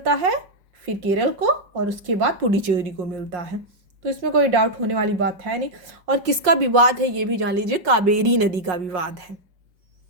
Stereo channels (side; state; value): left; late; 5.5 ms